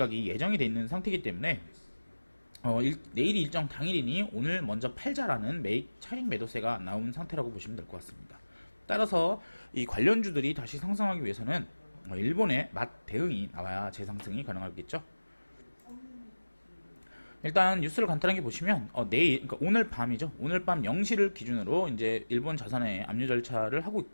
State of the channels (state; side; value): inverted; both; correlation -1.00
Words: 예정이 돼 있는 상태이기 때문에 내일이 일정 당일이니 오늘 먼저 팔자라는 차익 매도세가 나온 상태라고 보시면 될 것 같습니다. 따라서 이 관련주들이 다시 상승하기 위해서는 일본의 맛 대응이 나와야 재상승이 가능하겠죠. 일단 뉴스를 간단하게 보시면 그러니까 오늘 밤이죠. 오늘 밤 0시를 기준으로 이제 일본 자산의 압류 절차를 하고